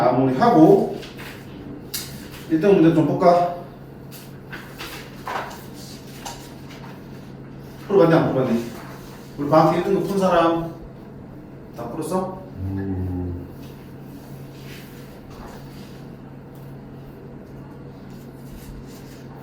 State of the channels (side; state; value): both; identical; correlation 1.00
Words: 1등 문제 좀 볼까? 풀어봤니 안 풀어봤니? 우리 방학 때 1등급 푼 사람 다 풀었어?